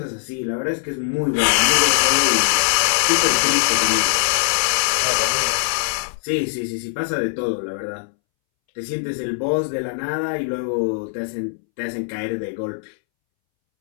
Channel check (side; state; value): right; silent; 64 dB below the other